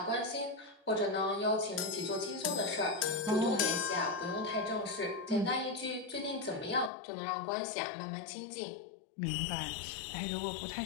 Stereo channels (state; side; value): drops out; right; at 6.9 s